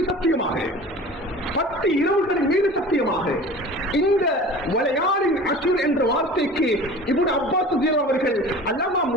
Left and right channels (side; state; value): both; normal; correlation 0.40